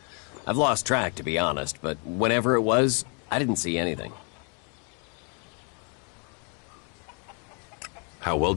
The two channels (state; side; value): quieter; right; 37.2 dB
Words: I've lost track, to be honest, but whenever it was, I didn't see anything. How well